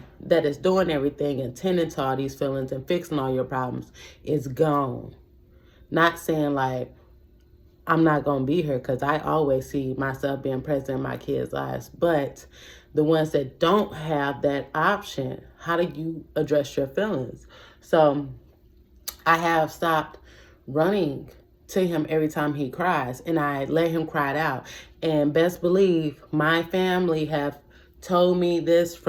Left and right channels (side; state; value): both; identical; correlation 1.00